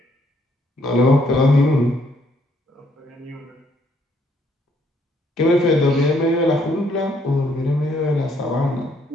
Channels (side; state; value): both; normal; correlation 0.69